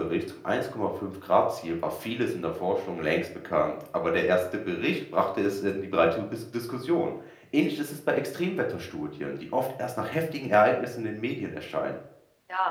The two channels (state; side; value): identical; both; correlation 1.00